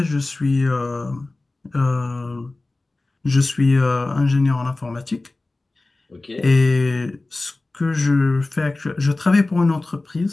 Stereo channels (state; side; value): quieter; right; 3.1 dB